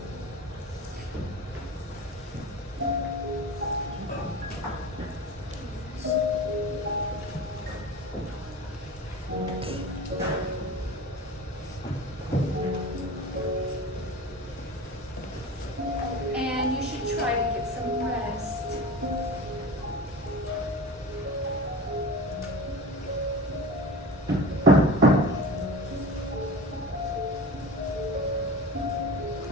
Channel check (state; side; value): normal; both; correlation 0.33